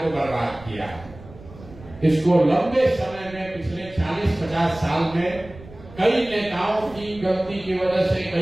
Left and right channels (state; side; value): noise; right; rumble, 19 dB below the sound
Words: बर्बाद किया। इसको लंबे समय में, पिछले 40-50 साल में कई नेताओं की गलती की वजह से,